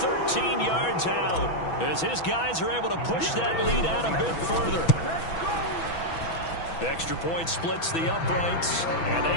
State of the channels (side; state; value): right; late; 6.1 ms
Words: yards out as his guys are able to push that lead out a bit further. Extra point splits the uprights, and